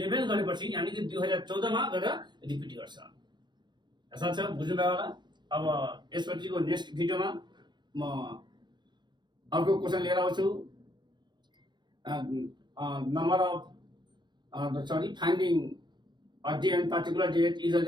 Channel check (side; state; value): left; late; 0.21 ms